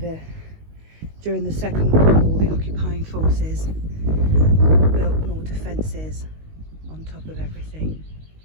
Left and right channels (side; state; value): left; late; 19 ms